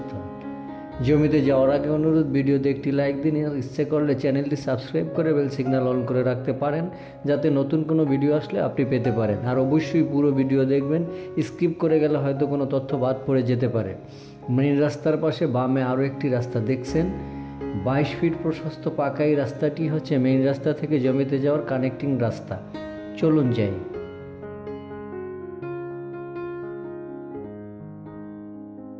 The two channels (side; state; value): both; identical; correlation 1.00